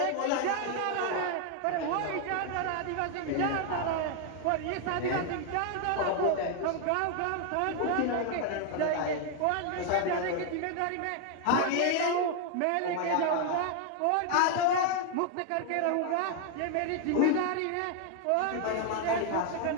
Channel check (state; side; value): different; both; correlation 0.00